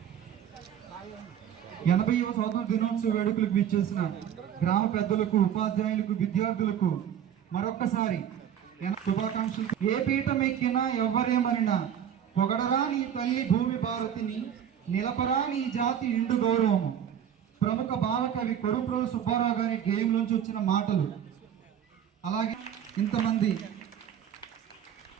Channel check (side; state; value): left; quieter; 9.3 dB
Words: 80వ స్వాతంత్ర దినోత్సవ వేడుకలకు విచ్చేసిన గ్రామ పెద్దలకు, ఉపాధ్యాయులకు, విద్యార్థులకు మరొక్కసారి శుభాకాంక్షలు. ఏ పీఠం ఎక్కినా ఎవ్వరేమనినా పొగడరా నీ తల్లి భూమి భారతిని, నిలపరా నీ జాతి నిండు గౌరవము. ప్రముఖ భావకవి కొడుప్రోలు సుబ్బారావు గారి గేయంలోంచి వచ్చిన మాటలు. అలాగే ఇంతమంది